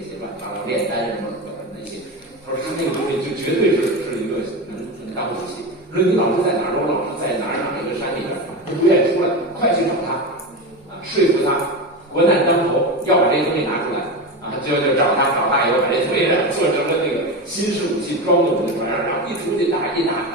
乱七八糟炼丹什么那些，他说他那个东西就绝对是一个能当武器。说你老师在哪儿？我老师在哪儿一个山里边，他不愿意出来，快去找他啊，说服他。国难当头，要把这个东西拿出来啊，就找他以后把这东西做成了那个新式武器，装到我们船上，然后一出去打赢了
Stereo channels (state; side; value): normal; both; correlation 0.21